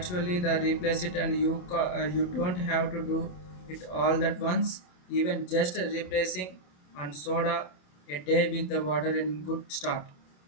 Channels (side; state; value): right; late; 28 ms